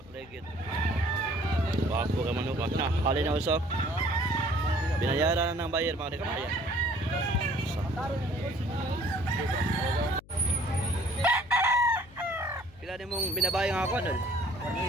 legged. Gwapo ka manok ka. Na, hali na usap. Binayaran na ng buyer mga di ka makaya. Pila din mong binabayang ako dul?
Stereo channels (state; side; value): noise; left; hum, 23 dB below the sound